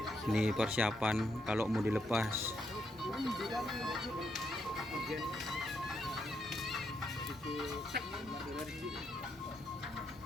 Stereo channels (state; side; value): normal; both; correlation 0.78